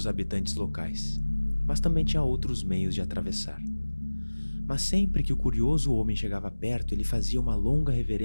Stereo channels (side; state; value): both; inverted; correlation -1.00